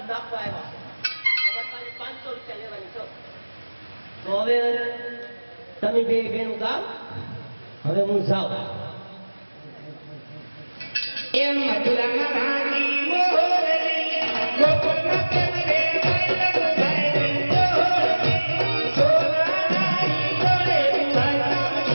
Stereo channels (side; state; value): both; inverted; correlation -1.00